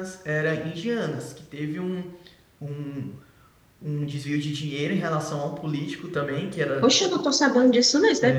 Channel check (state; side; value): identical; both; correlation 1.00